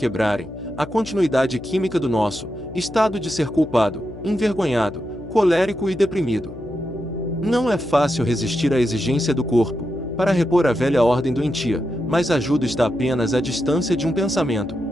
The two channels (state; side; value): noise; left; hum, 14 dB below the sound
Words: a continuidade química do nosso estado de ser culpado, envergonhado, colérico e deprimido. Não é fácil resistir à exigência do corpo para repor a velha ordem doentia, mas a ajuda está apenas à distância de um pensamento.